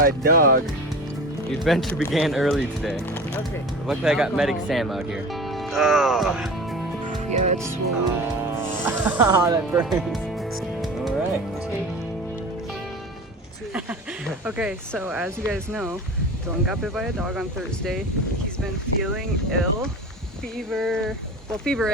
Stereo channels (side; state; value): both; normal; correlation 0.36